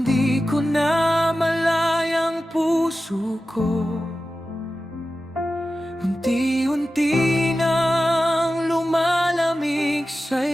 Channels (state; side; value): normal; both; correlation 0.94